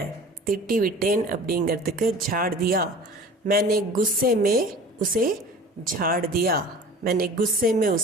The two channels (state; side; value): normal; both; correlation 0.42